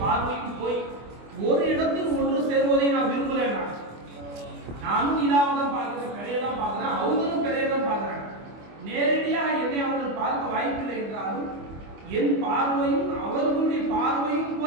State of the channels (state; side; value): late; left; 25 ms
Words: பார்வையும் போய் ஒரு இடத்தில் ஒன்று சேர்வதை நான் விரும்பல. நானும் நிலாவை தான் பார்க்கிறேன், பெறையை தான் பார்க்கிறேன், அவங்களும் பெறையை தான் பார்க்கிறாங்க. நேரடியாக என்னை அவர்கள் பார்க்க வாய்ப்பில்லை என்றாலும் என் பார்வையும் அவர்களுடைய பார்வையும்